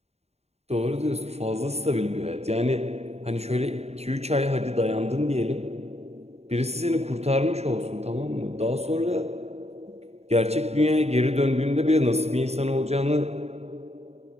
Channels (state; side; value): late; left; 0.31 ms